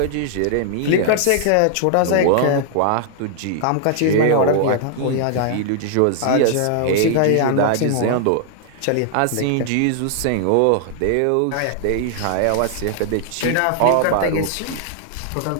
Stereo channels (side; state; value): both; different; correlation -0.01